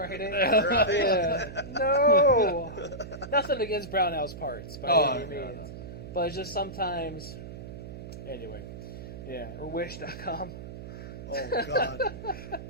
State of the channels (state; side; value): noise; right; hum, 11 dB below the sound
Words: Right. Yeah. No. Nothing against Brownell's parts by any no, means. no. But it's just sometimes. Anyway. Yeah. Or wish.com. Oh God.